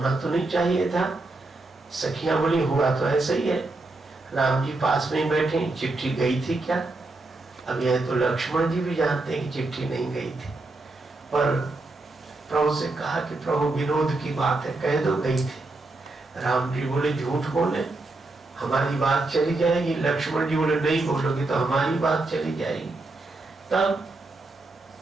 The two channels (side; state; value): left; quieter; 3.2 dB